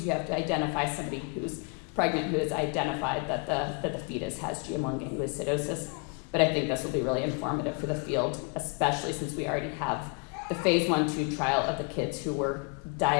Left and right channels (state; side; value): quieter; right; 34.5 dB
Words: you have to identify somebody who's pregnant who has identified that the fetus has GM1 gangliosidosis. But I think this will be really informative for the field, especially since we already have the phase 1/2 trial of the kids who were